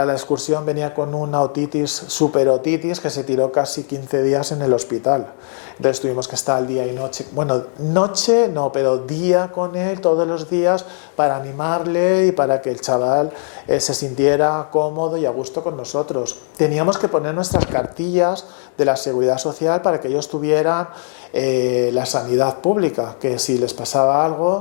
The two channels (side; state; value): right; silent; 56 dB below the other